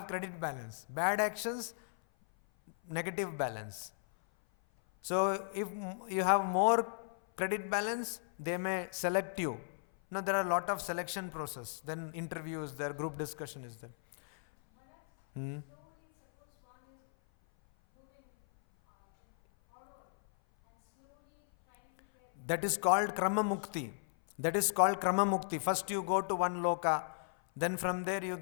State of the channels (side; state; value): right; silent; 54 dB below the other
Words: credit balance. Bad actions, negative balance. So if you have more credit balance, they may select you. Now there are a lot of selection process. Then interviews, there group discussion is there. Slowly, suppose one is moving forward and slowly trying to get. That is called Krama Mukti. That is called Krama Mukti. First you go to one loka, then from there you